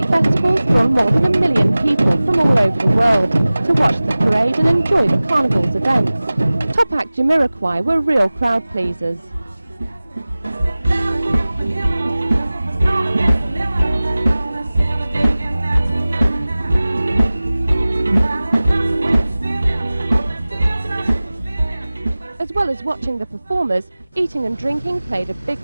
festivals draw more than 1 million people from all over the world to watch the parade and enjoy the Carnival's events. Top act Jamiroquai were real crowd pleasers. watching the performers, eating and drinking played a big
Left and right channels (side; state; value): both; inverted; correlation -0.98